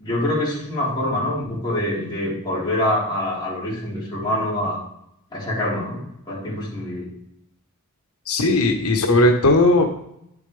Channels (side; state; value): both; normal; correlation 0.20